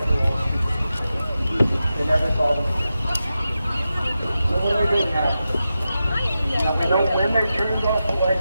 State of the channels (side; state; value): both; inverted; correlation -0.91